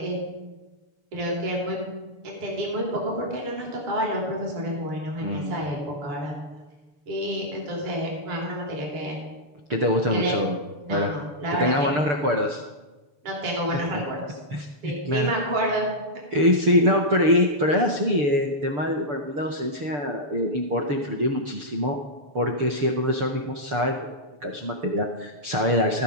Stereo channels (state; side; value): late; left; 6.9 ms